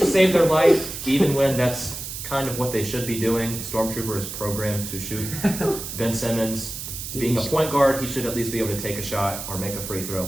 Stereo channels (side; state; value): right; noise; hiss, 8 dB below the sound